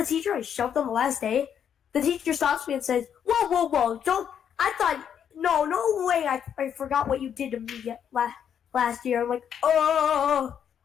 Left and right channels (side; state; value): right; quieter; 8.5 dB